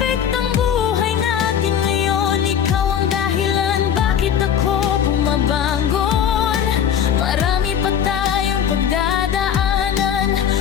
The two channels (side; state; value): right; quieter; 8.7 dB